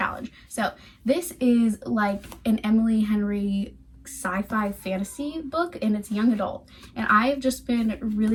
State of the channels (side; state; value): both; identical; correlation 1.00